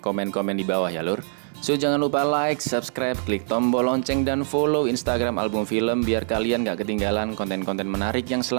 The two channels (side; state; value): left; silent; digital silence